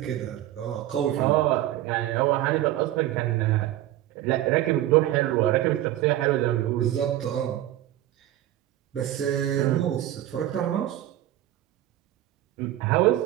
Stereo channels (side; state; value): left; quieter; 13.7 dB